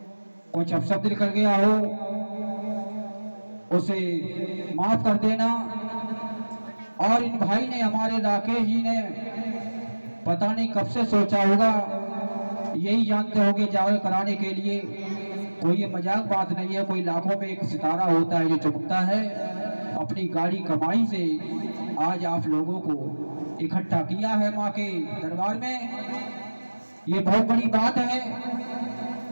कुछ अपशब्द निकल गया हो, उसे माफ कर देना। और इन भाई ने, हमारे राकेश जी ने पता नहीं कब से सोचा होगा, यही जानते होंगे जागरण कराने के लिए। कोई ये मजाक बात नहीं है, कोई लाखों में एक सितारा होता है जो चमकता है। अपनी गाड़ी कमाई से आज आप लोगों को इकट्ठा किया है माँ के दरबार में, ये बहुत बड़ी बात है।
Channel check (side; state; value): both; inverted; correlation -1.00